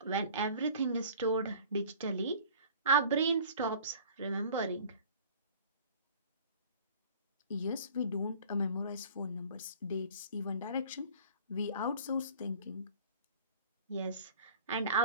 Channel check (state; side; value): inverted; both; correlation -0.46